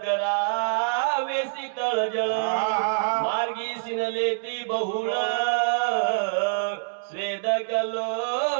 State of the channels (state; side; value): silent; left; digital silence